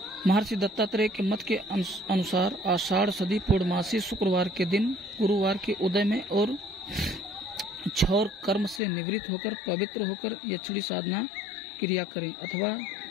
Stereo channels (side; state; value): right; drops out; at 8.8 s